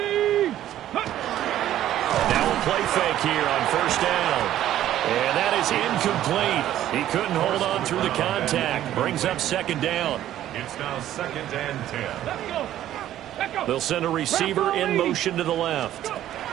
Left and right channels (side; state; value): left; quieter; 12.5 dB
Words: Now a play fake here on first down. And that is incomplete. He couldn't hold on through the contact. Brings up second down. It's now second and 10. Let's go. They'll send a receiver in motion to the left.